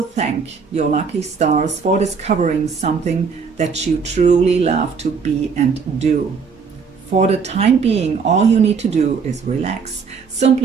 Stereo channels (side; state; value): left; quieter; 5.6 dB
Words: thank your lucky stars for discovering something that you truly love to be and do. For the time being, all you need to do is relax.